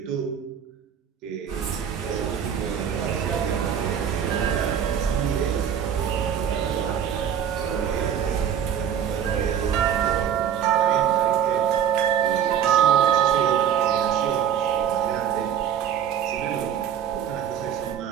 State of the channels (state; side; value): quieter; left; 8.9 dB